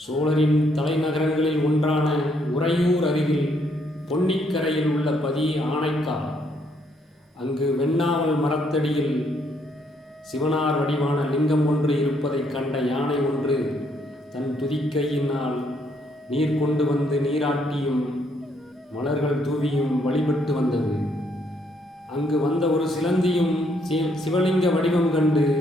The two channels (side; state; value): both; normal; correlation 0.71